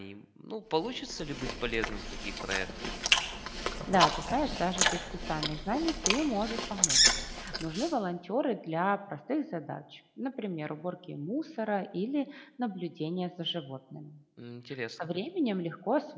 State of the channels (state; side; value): identical; both; correlation 1.00